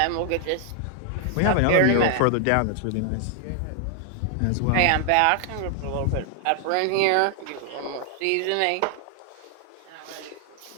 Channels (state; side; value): different; both; correlation 0.00